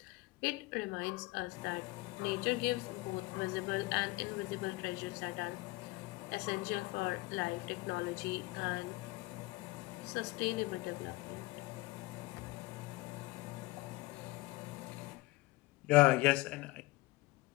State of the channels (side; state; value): right; quieter; 21.1 dB